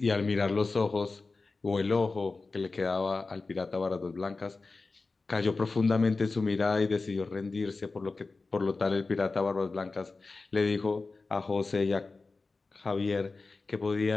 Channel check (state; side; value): quieter; right; 3.8 dB